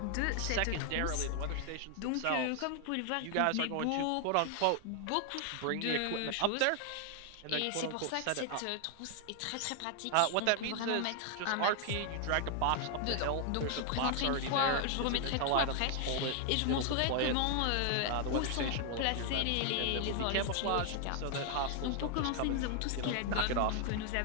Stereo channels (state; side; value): different; both; correlation 0.00